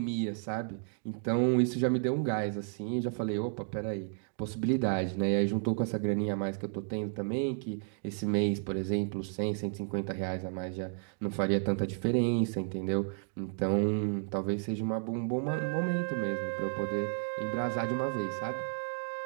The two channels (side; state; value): left; silent; 56 dB below the other